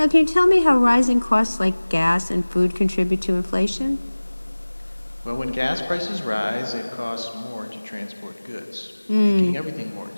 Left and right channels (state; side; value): inverted; both; correlation -1.00